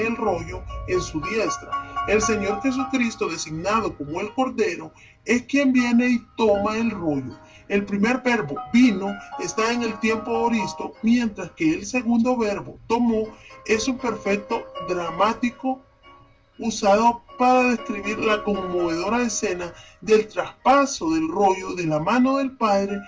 el rollo en su diestra. El Señor Jesucristo, designado como el Cordero, es quien viene y toma el rollo. El primer verbo, vino, está en el tiempo aoristo, mientras que el segundo verbo, tomó, es un perfecto dramático usado para describir la conmovedora escena del traspaso del rollo de la mano del Padre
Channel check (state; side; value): identical; both; correlation 1.00